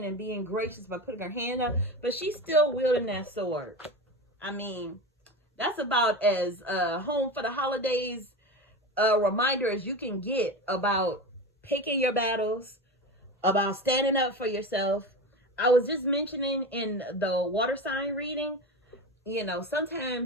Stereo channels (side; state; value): both; normal; correlation 0.25